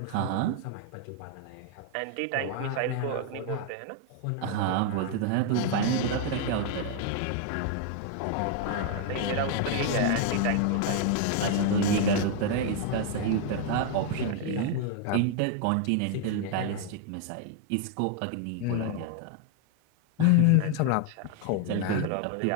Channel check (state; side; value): different; both; correlation 0.00